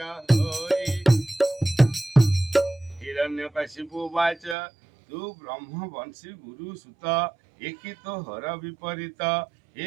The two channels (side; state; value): left; drops out; at 4.5 s